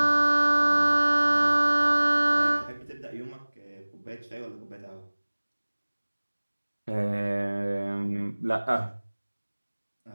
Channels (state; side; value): inverted; both; correlation -1.00